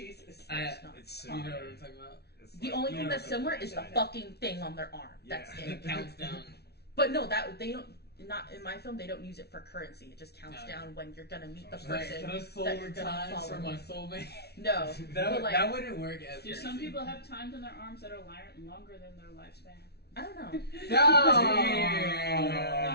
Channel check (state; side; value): late; right; 0.48 ms